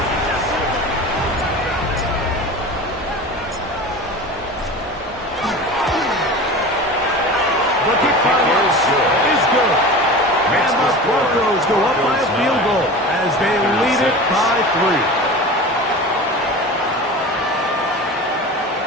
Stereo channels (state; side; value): normal; both; correlation 0.33